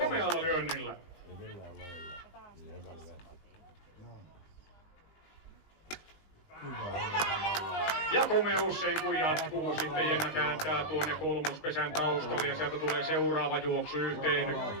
lyönnillä. Ja komeus ei kun jatkuu, sitten Jenna kääntää tuonne kolmospesän taustalle ja sieltä tulee seuraava juoksu 1-10.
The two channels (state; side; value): late; right; 19 ms